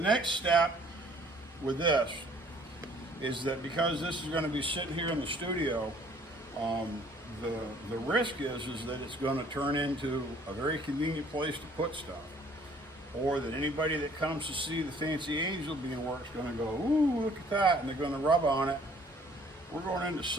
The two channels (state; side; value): normal; both; correlation 0.58